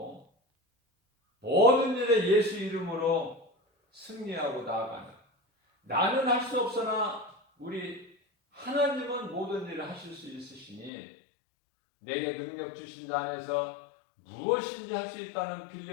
모든 일에 예수 이름으로 승리하고 나아가는, 나는 할 수 없으나 우리 하나님은 모든 일을 하실 수 있으시니 내게 능력 주신 자 안에서 무엇인지 할 수 있다는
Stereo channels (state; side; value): drops out; right; at 10.9 s